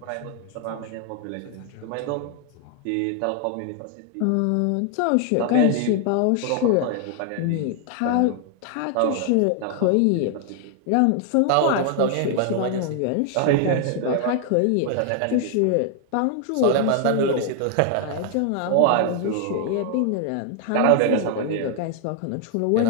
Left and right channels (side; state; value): both; different; correlation 0.00